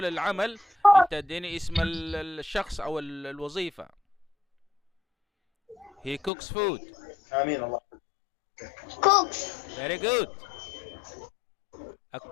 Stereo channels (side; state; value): right; drops out; at 6.3 s